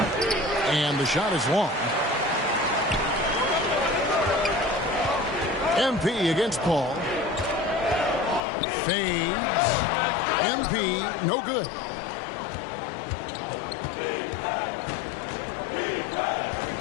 And the shot is long. MP against Paul. Fades. MP, no good.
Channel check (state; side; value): drops out; right; at 8.4 s